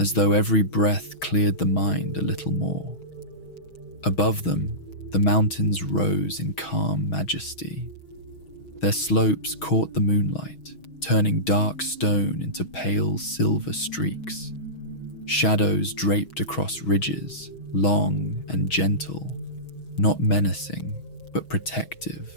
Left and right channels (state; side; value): late; right; 6.2 ms